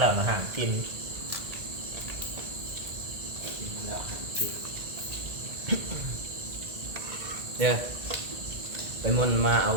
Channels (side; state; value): left; late; 1.8 ms